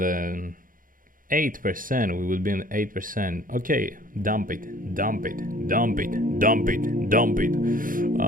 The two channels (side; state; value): left; late; 0.40 ms